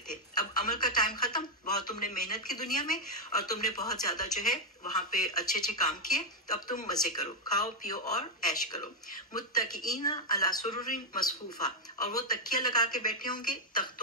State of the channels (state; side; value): normal; both; correlation 0.01